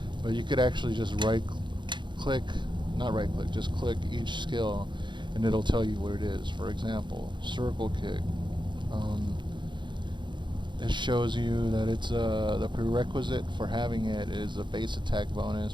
But you could actually just just click each skill, and it'll tell you what it is. For example, circle kick, It shows you that it's the prerequisite for having it is a base attack bonus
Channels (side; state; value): left; late; 0.23 ms